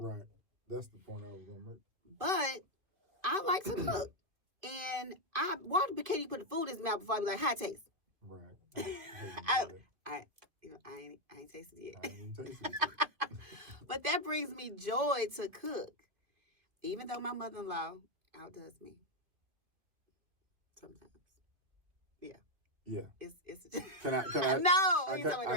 Right. That's the point I was going to make. But I like to cook. And Walter can't even put the food in his mouth before I be like, how it tastes? Right. I ain't tasted it I yet. ain't tasted it yet. But that brings me joy to cook. Even though my mother-in-law outdoes me sometimes. Yeah. Yeah. It's Can I? no, I he's can't. talking I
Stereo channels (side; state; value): left; late; 2.5 ms